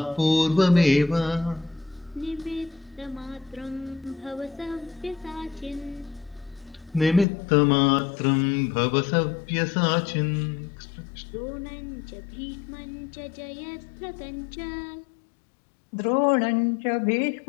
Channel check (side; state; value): right; drops out; at 7.2 s